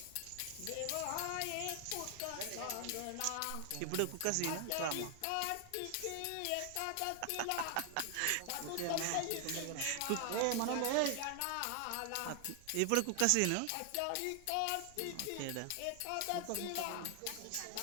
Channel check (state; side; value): different; both; correlation 0.00